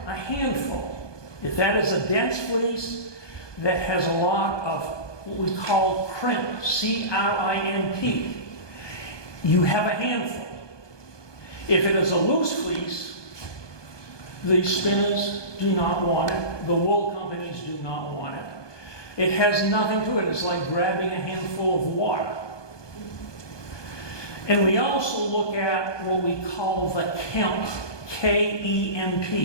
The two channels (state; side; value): late; right; 1.2 ms